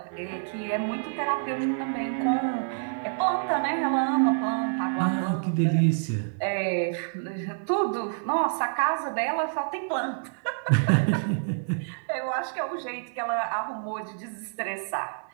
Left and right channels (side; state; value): left; silent; 60 dB below the other